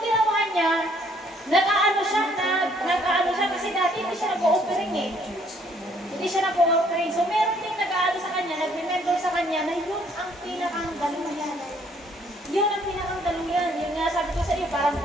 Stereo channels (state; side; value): normal; both; correlation 0.64